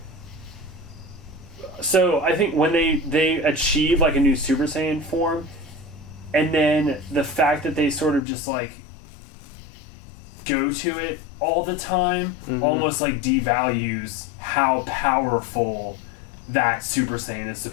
so I think when they achieve like a new Super Saiyan form, and then the fact that they sort of just like go to it all the time almost like devalues how powerful that Super Saiyan is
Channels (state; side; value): drops out; right; at 8.2 s